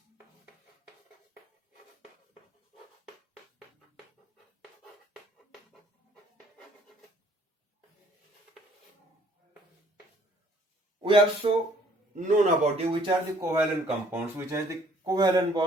We also known about which are the covalent compounds, which has the covalent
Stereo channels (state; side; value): normal; both; correlation 0.60